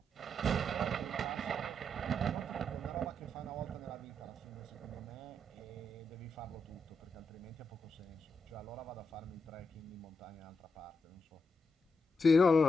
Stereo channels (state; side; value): normal; both; correlation 0.83